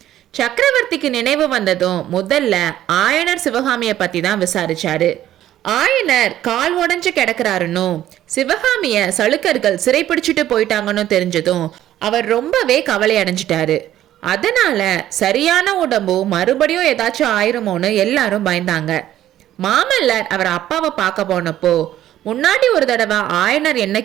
சக்கரவர்த்திக்கு நினைவு வந்ததும் முதல்ல ஆயனர் சிவகாமிய பத்தி தான் விசாரிச்சாரு. ஆயனர் கால் உடஞ்சு கிடக்குறாருன்னு சிவகாமிய சளுக்கர்கள் சிறைப்பிடிச்சிட்டு போயிட்டாங்கன்னு தெரிஞ்சதும் அவர் ரொம்பவே கவலை அடைஞ்சிட்டாரு. அதனால சரியான உடம்பு மறுபடியும் ஏதாச்சும் ஆயிருமோன்னு எல்லாரும் பயந்தாங்க. மாமல்லர் அவர் அப்பாவை பார்க்க போனப்போ முன்னாடி ஒரு தடவை ஆயனர் என்ன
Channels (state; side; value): quieter; left; 12.6 dB